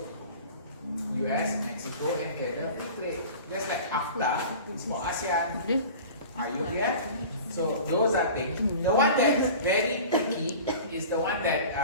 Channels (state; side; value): inverted; both; correlation -0.39